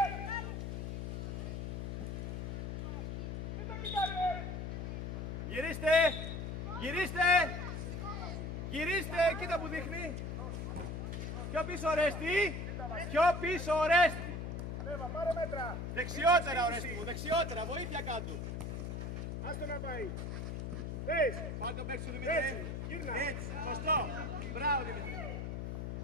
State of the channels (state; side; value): noise; left; hum, 4 dB below the sound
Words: Γυρίστε! Γυρίστε! Γυρίστε! Κοίτα που δείχνει! Πιο πίσω Ορέστη! Πιο πίσω Ορέστη! Ανέβα, πάρε μέτρα. Δεξιότερα Ορέστη μου, δεξιότερα! Βοήθεια κάτω! Άστο να πάει. Πες. Πάρε τον παίκτη σου Δημήτρη! Έτσι, γύρνα. Έτσι! Σωστό! Μπράβο Δημήτρη!